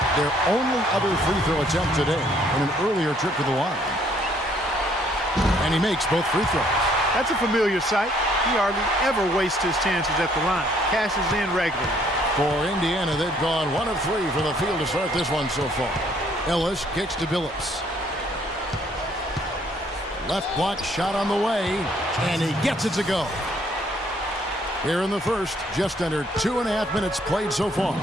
their only other free throw attempt today on an earlier trip to the line. And he makes both free throws. That's a familiar sight. He hardly ever wastes his chances at the line. Cashes in regularly. For Indiana, they've gone 1 of 3 from the field to start this one so far. Ellis kicks to Billups. Left block shot on the way, and he gets it to go. Here in the first, just under 2.5 minutes played so far.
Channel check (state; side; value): normal; both; correlation 0.64